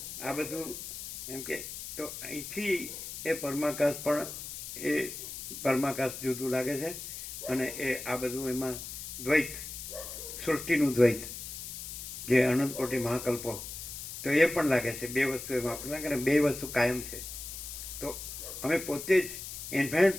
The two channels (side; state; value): left; noise; hiss, 9 dB below the sound